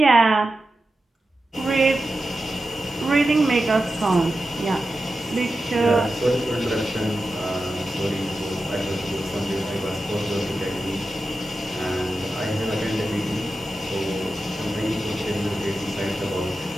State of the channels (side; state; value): both; normal; correlation 0.91